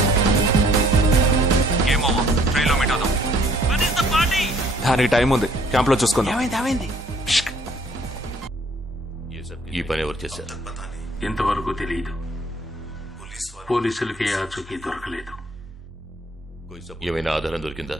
Game over. ట్రైన్లో మీట్ అవుదాం. దానికి టైం ఉంది. క్యాంప్ లో చూసుకుందాం. ఈ పని ఎవరు చేశారు? ఇంతవరకు తెలియదు. పోలీసులకి ఆచూకీ దొరకలేదు. ఏమైనా ఆధారం దొరికిందా?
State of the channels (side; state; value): both; normal; correlation 0.60